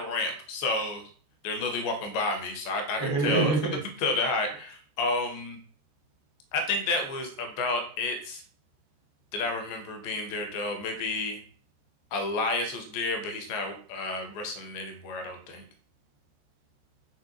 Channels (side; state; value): right; late; 14 ms